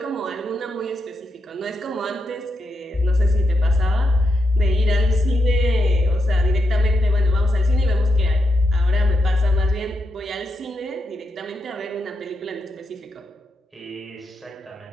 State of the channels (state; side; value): normal; both; correlation 0.84